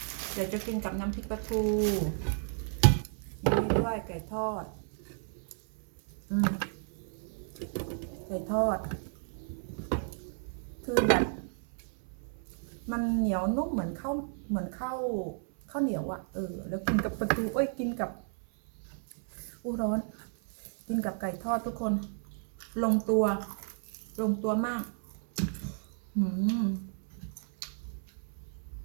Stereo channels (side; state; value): left; silent; 56 dB below the other